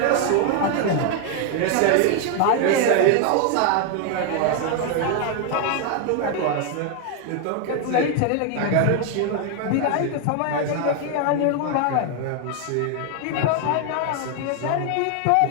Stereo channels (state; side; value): different; both; correlation 0.01